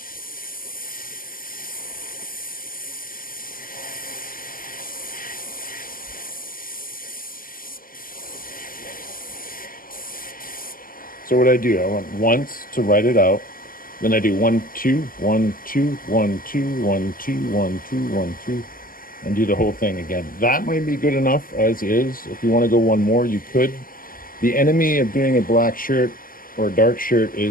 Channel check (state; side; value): late; right; 0.41 ms